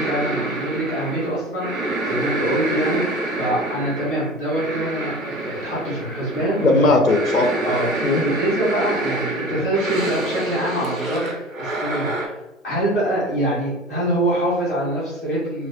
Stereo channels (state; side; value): normal; both; correlation 0.38